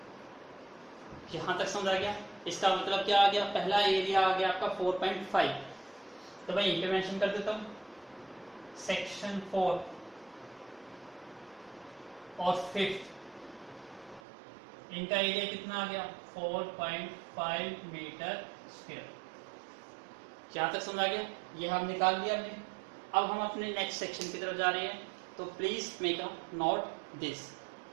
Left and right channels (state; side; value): drops out; left; at 14.2 s